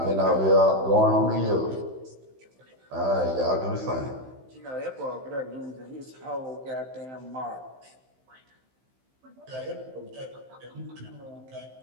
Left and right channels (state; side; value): late; left; 15 ms